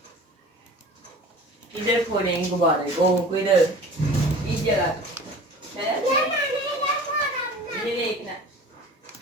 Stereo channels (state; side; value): normal; both; correlation 0.41